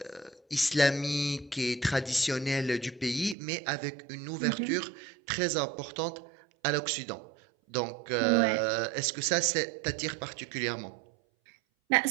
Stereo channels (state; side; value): drops out; left; at 3.4 s